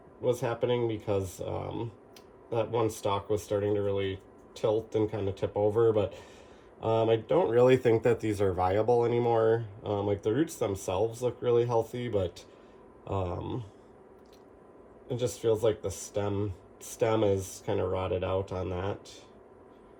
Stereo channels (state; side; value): identical; both; correlation 1.00